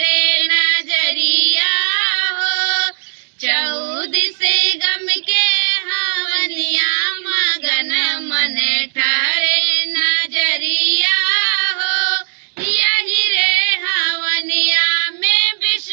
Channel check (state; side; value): silent; left; digital silence